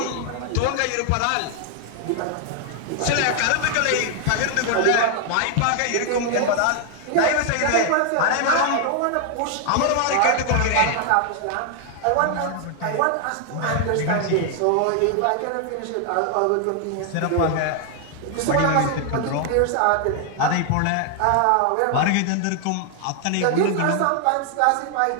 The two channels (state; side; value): different; both; correlation 0.00